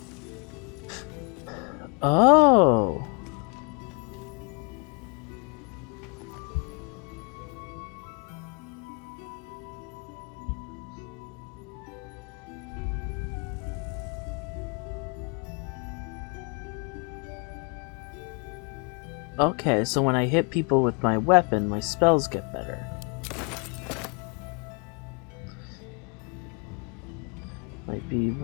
Oh. Okay, so when I hit people with my weapon, my spells get better. Might be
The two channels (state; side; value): quieter; right; 34.5 dB